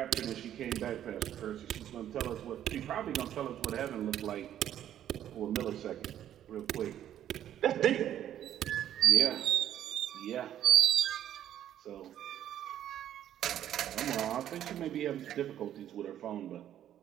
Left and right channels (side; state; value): left; quieter; 11.0 dB